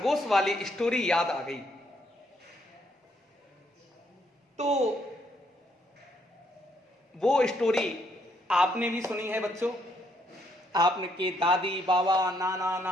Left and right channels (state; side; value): normal; both; correlation 0.72